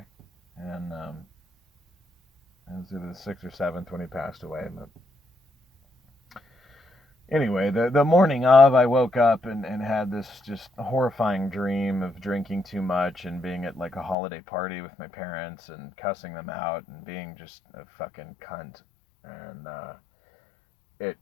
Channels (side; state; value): right; drops out; at 14.2 s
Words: and it was either the 6th or 7th when he passed away. But anyway, the morning of, I woke up and had this just horrifying dream of drinking too much and being at like a holiday party with my parents and cussing them out and being just a fucking cunt. And it